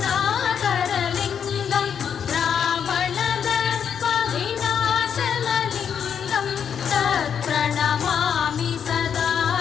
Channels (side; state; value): right; quieter; 7.7 dB